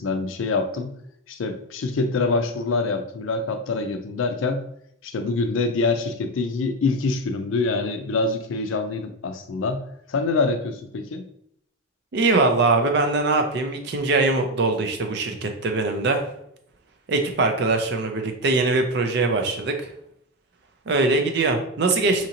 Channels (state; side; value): normal; both; correlation 0.10